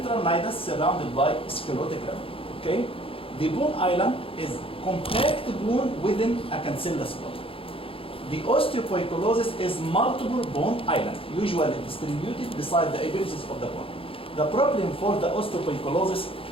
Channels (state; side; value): late; right; 0.27 ms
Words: nidus surrounded by sclerotic rim. Okay, the bone island is compact bone within a cancellous bone. The osteopoikilosis is multiple bone island, usually distributed beside the apices of the bone. The problem for the osteopoikilosis